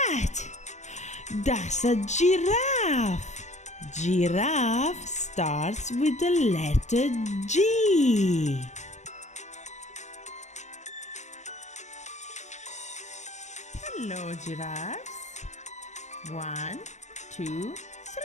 That's a giraffe. Giraffe starts with the letter G. Hello, giraffes. 1, 2,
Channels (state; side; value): late; right; 0.34 ms